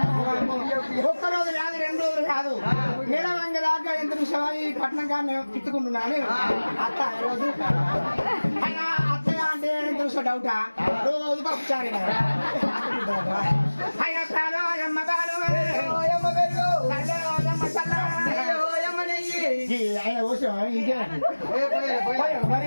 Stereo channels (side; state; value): both; inverted; correlation -1.00